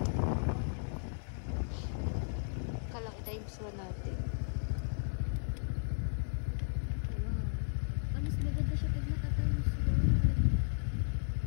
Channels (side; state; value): right; silent; digital silence